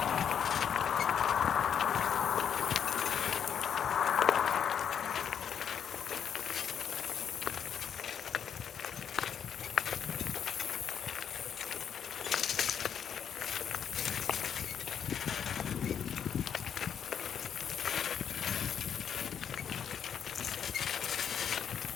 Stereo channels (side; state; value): right; quieter; 8.1 dB